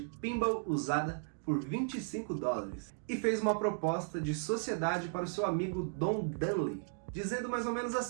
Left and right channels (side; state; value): left; silent; digital silence